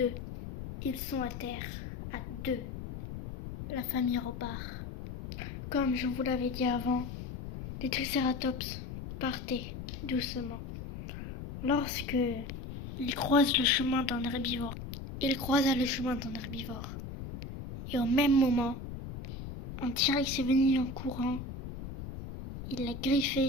Ils sont à terre, à deux. La famille repart. Comme je vous l'avais dit avant, les tricératops partaient doucement. Lorsque ils croisent le chemin d'un herbivore, il croisa le chemin d'un herbivore. Et au même moment, un T-Rex est venu en courant. Il l'a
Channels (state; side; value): noise; left; rumble, 9 dB below the sound